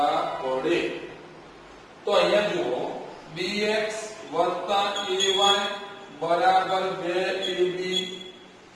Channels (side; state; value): both; identical; correlation 1.00